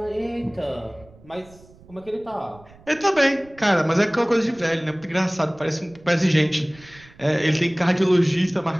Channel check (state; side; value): noise; right; rumble, 25 dB below the sound